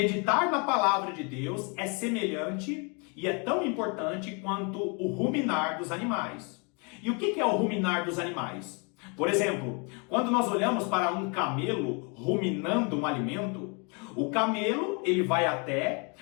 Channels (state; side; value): quieter; right; 33.7 dB